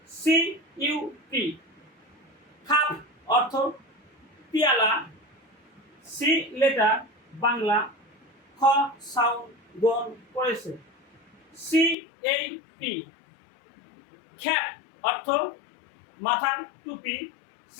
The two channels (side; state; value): right; drops out; at 12.0 s